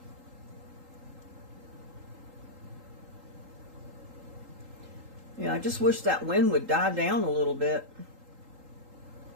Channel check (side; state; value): left; late; 3.8 ms